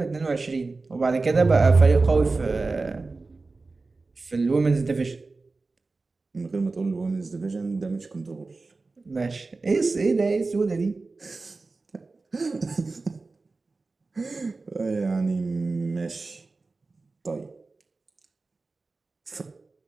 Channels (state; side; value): quieter; left; 3.7 dB